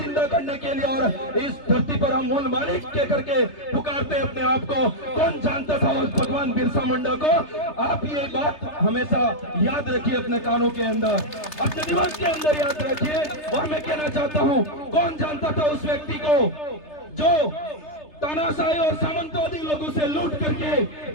करने के लिए और इस धरती पर हम मूल मालिक के करके पुकारते अपने आप को। कौन जानता था उस भगवान बिरसा मुंडा को? आप ये बात हमेशा याद रखिए अपने कानों के अंदर, अपने दिमाग के अंदर याद रखिए। और मैं कहना चाहता हूँ, कौन जानता था उस व्यक्ति को जो तानाशाही और सामंतवादी लोगों से लूट करके,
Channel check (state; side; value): late; right; 3.3 ms